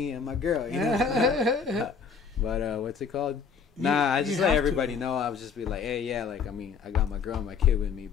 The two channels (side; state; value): right; quieter; 5.9 dB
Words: and my girl. But what's it called? Nah, I just let everybody know. I would just be like, hey, yeah, like I got my girl and my kid with me,